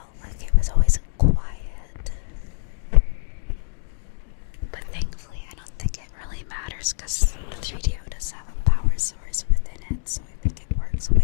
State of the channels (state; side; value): silent; right; digital silence